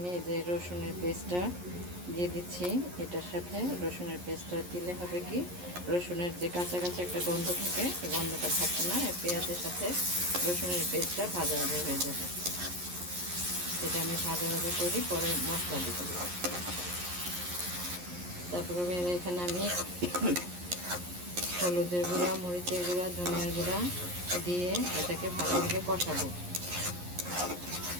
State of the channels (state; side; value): late; left; 11 ms